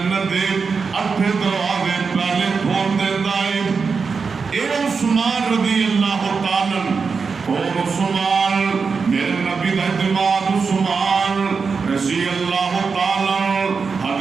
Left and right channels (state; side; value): quieter; left; 5.1 dB